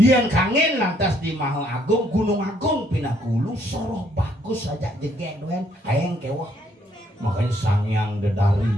kangen lantas di Maha Agung Gunung Agung Pinakulu soroh bagus saja jege doen aeng kewah makanya sangyang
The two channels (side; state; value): both; normal; correlation 0.68